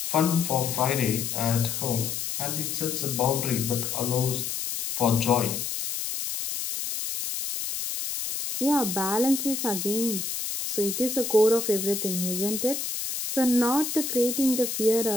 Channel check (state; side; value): noise; left; hiss, 4 dB below the sound